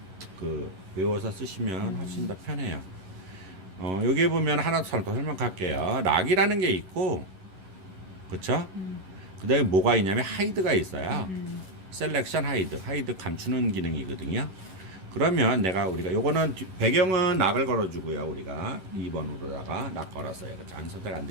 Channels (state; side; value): late; left; 11 ms